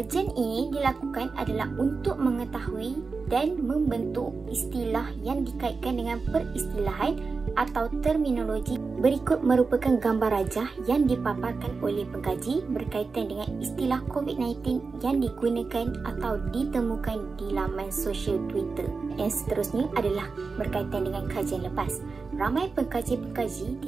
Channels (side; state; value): left; quieter; 4.5 dB